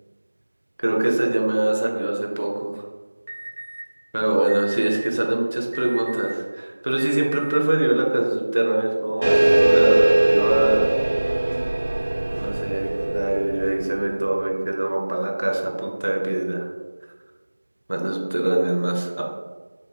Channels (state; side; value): inverted; both; correlation -1.00